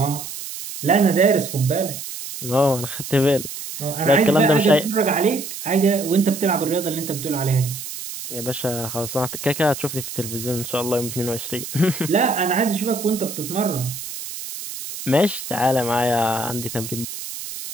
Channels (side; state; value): right; noise; hiss, 9 dB below the sound